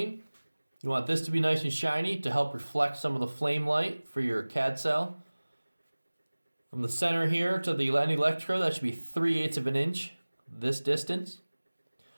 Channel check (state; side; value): inverted; both; correlation -1.00